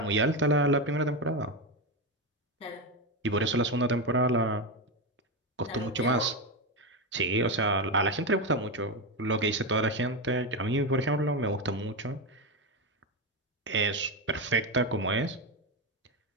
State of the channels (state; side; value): normal; both; correlation 0.12